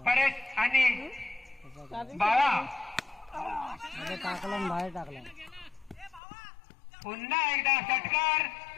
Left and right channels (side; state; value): right; drops out; at 6.2 s